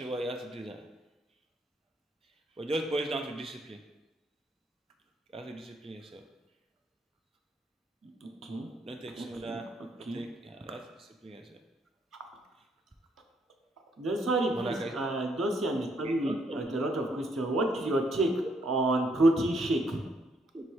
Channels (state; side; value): normal; both; correlation 0.72